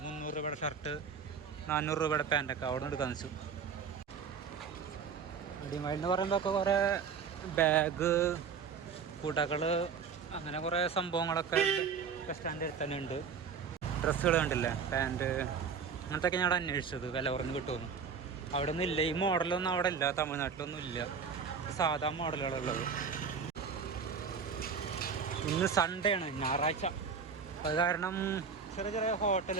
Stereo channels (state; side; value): quieter; left; 6.1 dB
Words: 300 രൂപയുടെ ഷർട്ട്, 400 രൂപയുടെ പാൻറ്റൊക്കെ അവിടെ നിന്ന് എടുക്കാൻ വെച്ചു. അടിമാലി എന്ന് പറയുമ്പോഴൊക്കെ കുറേ ബാഗ്, കുടകൾ, അങ്ങനെ കുറേ സംഭവങ്ങളൊക്കെ ബസ് സ്റ്റാൻഡിൽ തന്നെ ഉണ്ട്. ഡ്രസ്സുകൾ കണ്ടില്ലേ, പാൻറ്റ്, അങ്ങനത്തെയൊക്കെ ഞാൻ അവിടെ അന്വേഷിച്ചത് വില കുറഞ്ഞ് കിട്ടുമെന്ന്. അവിടെ ഒന്നും ഇല്ല. ഈ മോഡലൊന്നും അവിടെ ഇല്ല, തമിഴ്നാട്ടിലൊന്നും ഇല്ല. സാധാ മോഡലുകളുള്ളത്. ഇന്ന് സൺഡേ ആണ്, ഞായറാഴ്ച. അത് കാരണം ചെറിയ ചെറിയ